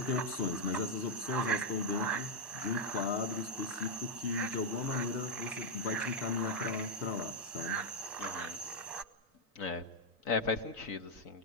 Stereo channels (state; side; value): normal; both; correlation 0.00